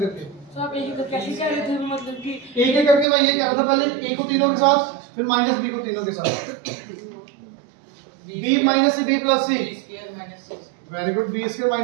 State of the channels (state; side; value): drops out; left; at 3.1 s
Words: सर आप एक एक कैसे कह रहे थे, मतलब कि एक एक करके मैं ये कह रहा था, पहले a को तीनों के साथ, फिर माइनस b को तीनों के साथ, b minus c, b plus c, square minus c, very good, b square